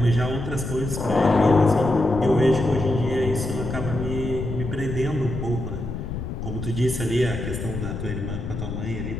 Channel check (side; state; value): left; noise; rumble, 6 dB below the sound